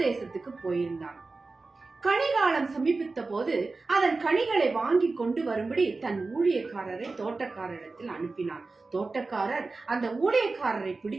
போயிருந்தான். கனிகாலம் சமீபித்த போது அதன் கனிகளை வாங்கி கொண்டு வரும்படி தன் ஊழியக்காரரை தோட்டக்காரரிடத்தில் அனுப்பினான். தோட்டக்காரர் அந்த ஊழியக்காரரை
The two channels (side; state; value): left; quieter; 3.7 dB